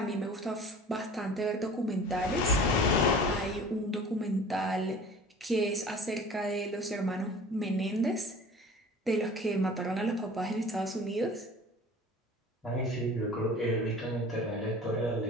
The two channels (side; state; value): both; normal; correlation 0.43